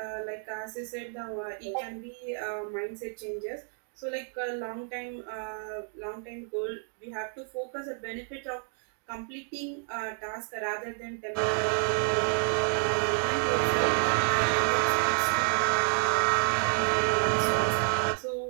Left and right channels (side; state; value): left; silent; 58 dB below the other